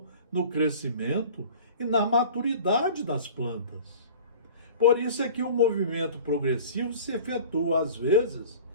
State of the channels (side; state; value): both; inverted; correlation -0.42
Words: no crescimento e na maturidade das plantas. Por isso é que o movimento progressivo se efetua, às vezes,